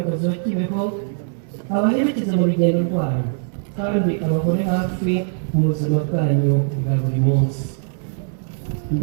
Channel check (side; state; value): left; silent; 65 dB below the other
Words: wa Kibeho abaherekeza mu rugendo rwanyu kandi abahore hafi mu buzima bwanyu bwa buri munsi.